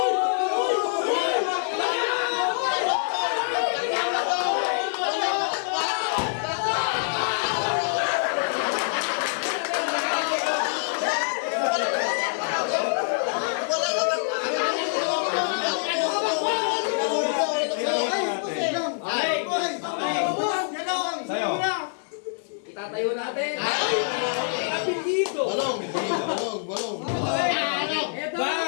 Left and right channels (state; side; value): silent; right; digital silence